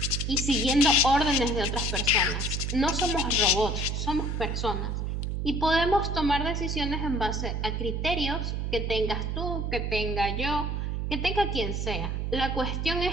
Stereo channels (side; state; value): right; noise; hum, 1 dB below the sound